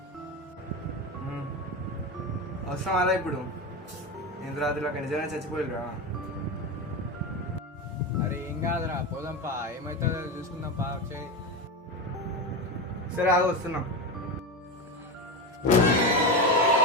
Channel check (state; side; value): normal; both; correlation 0.19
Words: అవసరం అలా ఇప్పుడు ఇంత రాత్రి అక్కడ నిజంగా చచ్చిపోయిరా. అరే ఏం కాదురా, పోదాంపా, ఏమవుతుందో చూసుకుందాంపా. వచ్చే సరే ఆగ వస్తున్నాం.